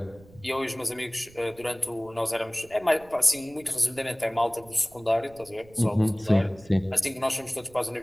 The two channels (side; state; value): right; noise; rumble, 24 dB below the sound